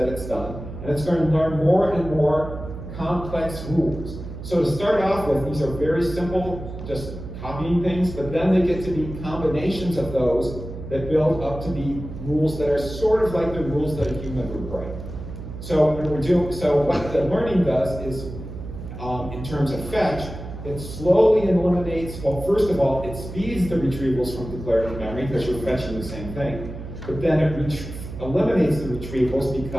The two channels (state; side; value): noise; right; hum, 10 dB below the sound